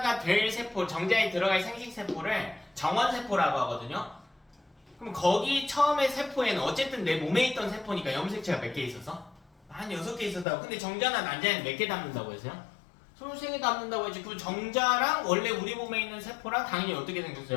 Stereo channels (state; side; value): drops out; right; at 10.5 s